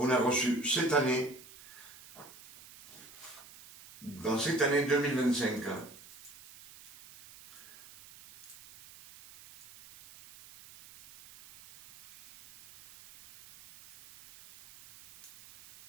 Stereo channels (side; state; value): right; noise; hiss, 20 dB below the sound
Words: a reçues cette année, dans cette année 2025.